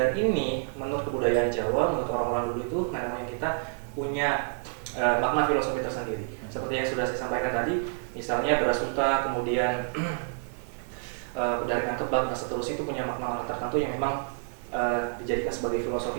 ini menurut kebudayaan Jawa, menurut orang-orang dulu itu nenek moyang kita punya makna filosofi tersendiri. Seperti yang sudah saya sampaikan tadi, misalnya beras unta, kemudian dari kebab dan seterusnya itu punya makna tertentu yang memang dijadikan sebagai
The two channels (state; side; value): silent; left; 59 dB below the other